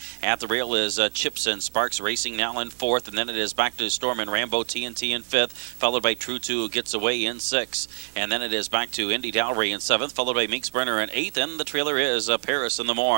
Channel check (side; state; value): left; silent; digital silence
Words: At the rail is Chips and Sparks racing now in fourth, and then it is back to Storm and Rambo TNT in fifth, followed by True 2 who gets away in sixth. And then it is back to Indy Dowry in seventh, followed by Minx Brenner in eighth, and the trailer is Paris in the